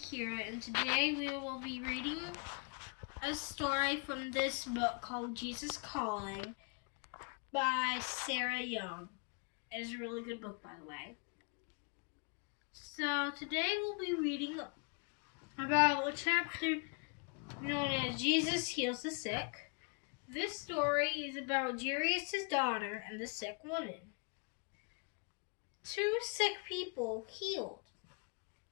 Akira, and today we will be reading a story from this book called Jesus Calling by Sarah Young. It is a really good book, by the way. So today we'll be reading about a chapter known as Jesus Heals the Sick. This story is about Jairus' daughter and the sick woman. Two sick people healed.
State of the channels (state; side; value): quieter; right; 34.9 dB